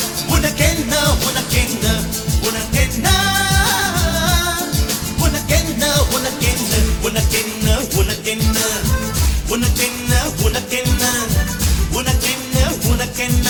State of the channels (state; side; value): identical; both; correlation 1.00